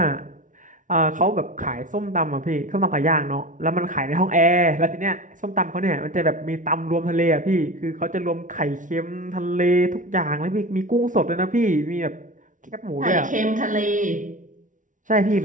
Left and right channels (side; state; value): left; late; 0.37 ms